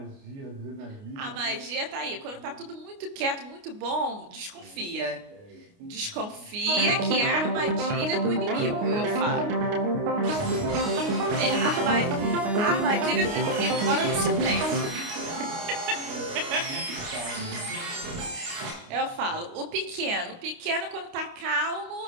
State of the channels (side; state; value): left; late; 29 ms